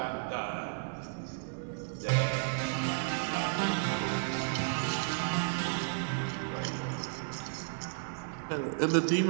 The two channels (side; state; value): left; silent; 56 dB below the other